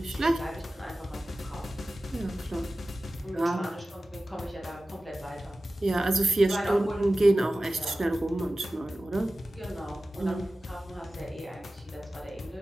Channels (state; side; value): normal; both; correlation 0.96